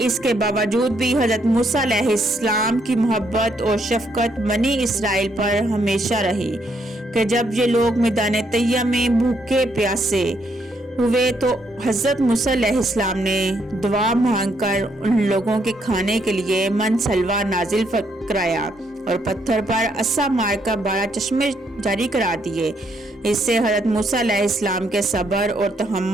کے باوجود بھی حضرت موسیٰ علیہ السلام کی محبت اور شفقت بنی اسرائیل پر ہمیشہ رہی کہ جب یہ لوگ میدان طیہ میں بھوکے پیاسے ہوئے تو حضرت موسیٰ علیہ السلام نے دعا مانگ کر ان لوگوں کے کھانے کے لیے من سلوا نازل کرایا اور پتھر پر عصا مار کر 12 چشمے جاری کرا دیے۔ اس سے حضرت موسیٰ علیہ السلام کے صبر اور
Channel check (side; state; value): both; normal; correlation 0.73